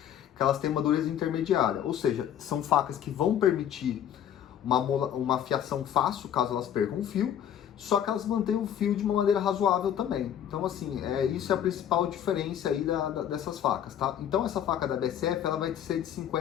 que elas têm uma dureza intermediária, ou seja, são facas que vão permitir uma afiação fácil, caso elas percam o fio, só que elas mantêm o fio de uma maneira razoável também. Então, assim, isso é a principal diferença aí dessas facas, tá? Então, essa faca da BSF, ela vai ser de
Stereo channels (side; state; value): right; quieter; 9.8 dB